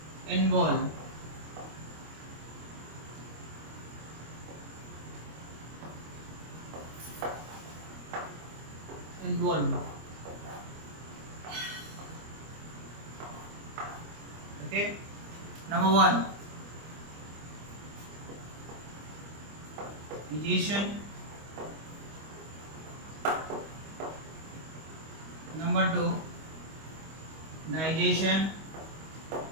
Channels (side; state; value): left; late; 25 ms